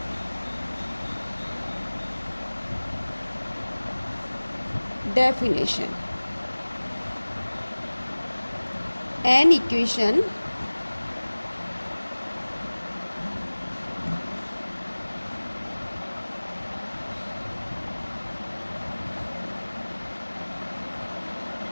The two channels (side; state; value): both; inverted; correlation -1.00